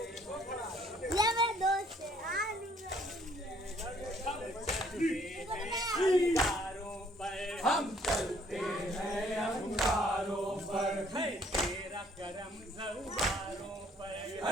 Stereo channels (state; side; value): normal; both; correlation 0.62